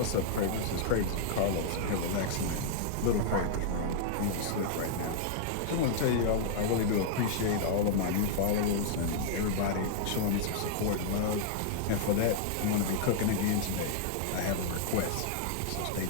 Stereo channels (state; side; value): different; both; correlation -0.01